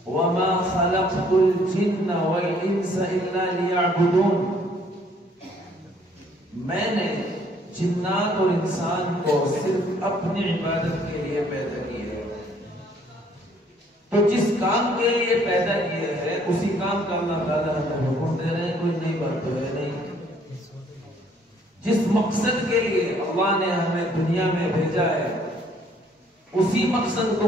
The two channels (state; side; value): normal; both; correlation 0.62